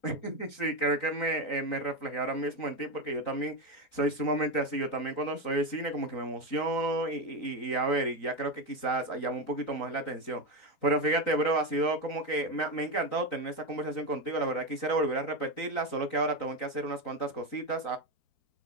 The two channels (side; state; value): right; late; 3.9 ms